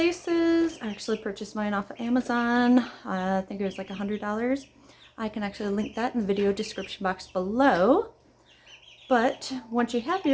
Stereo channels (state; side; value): identical; both; correlation 1.00